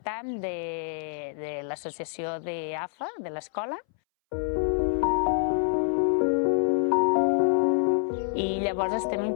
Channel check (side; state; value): right; silent; 60 dB below the other